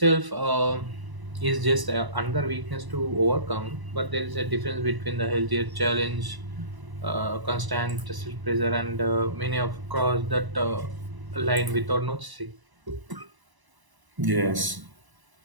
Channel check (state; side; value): late; left; 1.0 ms